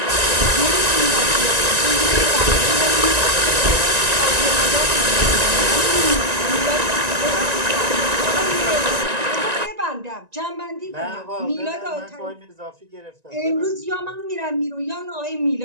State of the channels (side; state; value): left; late; 1.9 ms